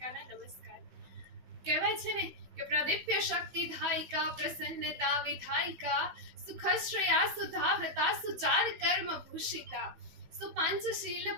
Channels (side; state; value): left; late; 16 ms